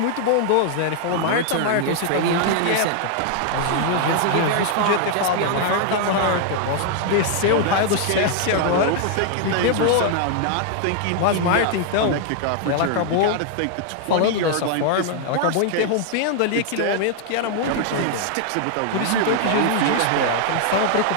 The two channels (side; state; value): both; different; correlation 0.00